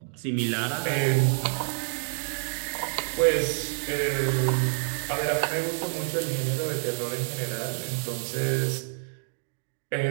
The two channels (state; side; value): silent; left; digital silence